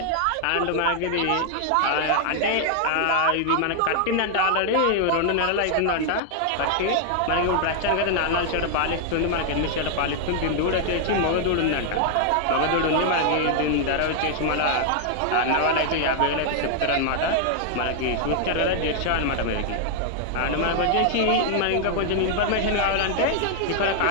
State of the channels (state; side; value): different; both; correlation 0.00